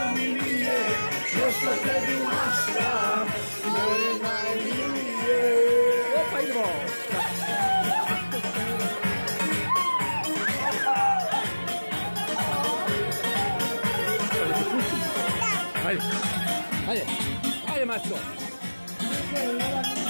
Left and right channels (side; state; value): both; inverted; correlation -1.00